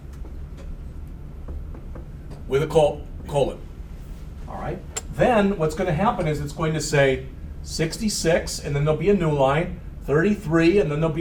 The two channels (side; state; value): both; identical; correlation 1.00